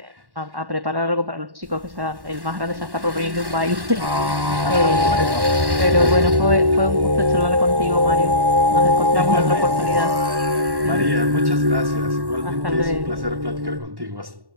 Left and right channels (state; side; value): late; left; 1.1 ms